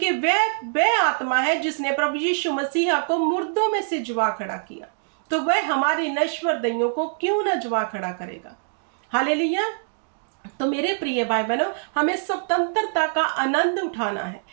वह आत्मा है जिसने प्रभु यीशु मसीह को मुर्दों में से जुआ खड़ा किया, तो वह हमारी नश्वर दैयों को क्यों ना जुआ खड़ा करेगा। हालेलुया। तो मेरे प्रिय भाई बहनों, हमें स्वतंत्रता का आनंद उठाना है।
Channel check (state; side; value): silent; left; digital silence